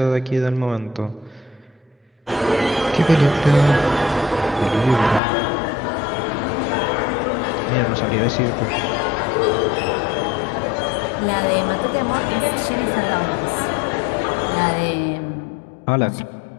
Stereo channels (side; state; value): right; drops out; at 5.2 s